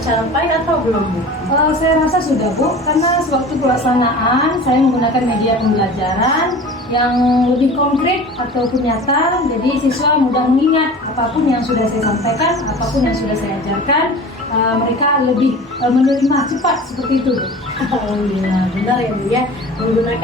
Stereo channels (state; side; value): normal; both; correlation 0.39